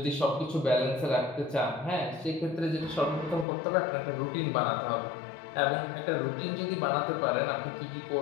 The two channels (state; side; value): drops out; right; at 3.5 s